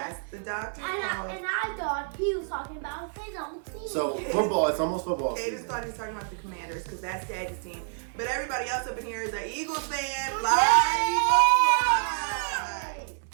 the doctor And called. I thought he was talking about his own team. So football, it's almost football Cadence season. thought he was talking about the Commanders because that's Daddy's team. But everybody else up in here is an Eagles fan. Fly,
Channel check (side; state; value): left; silent; digital silence